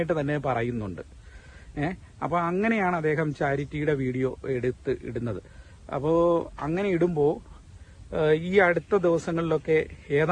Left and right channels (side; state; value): both; identical; correlation 1.00